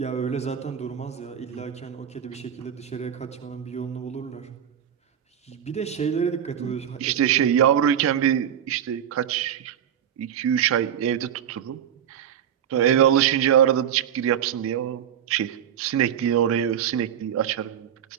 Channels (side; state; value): left; quieter; 9.4 dB